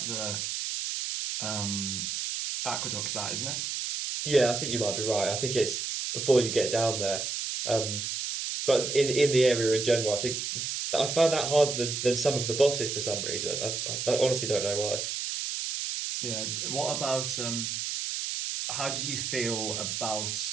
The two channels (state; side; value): noise; right; hiss, 3 dB below the sound